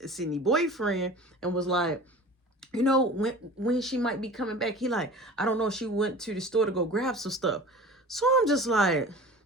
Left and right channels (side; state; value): both; normal; correlation 0.39